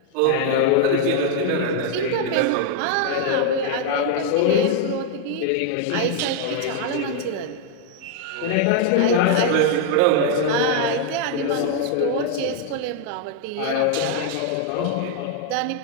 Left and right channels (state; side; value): different; both; correlation 0.00